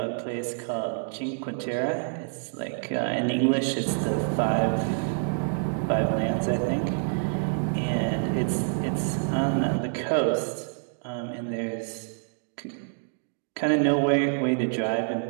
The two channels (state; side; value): silent; left; digital silence